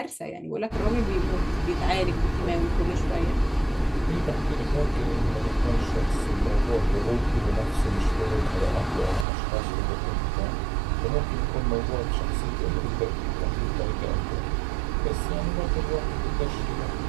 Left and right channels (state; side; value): drops out; left; at 9.2 s